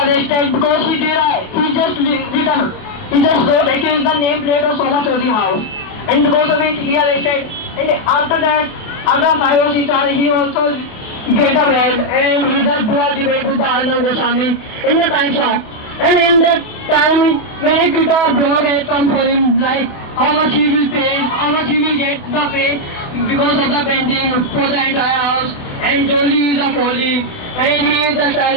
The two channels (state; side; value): late; right; 28 ms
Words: because he just wrote against the nameplate of Soma Chaudhary house. And because of it, he arrested. And after that, after 5 or 6 hours, he also get a bail, and he just do a debate with the Arnab Goswami in the time show. And in that time, many people blog had come for him, like how much he will pay, how much he will get the pay because of the painting for the entire house. And Jolie is a Foley, and he is the